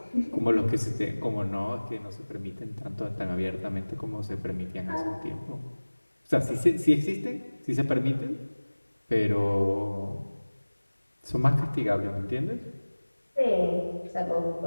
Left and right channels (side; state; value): both; inverted; correlation -1.00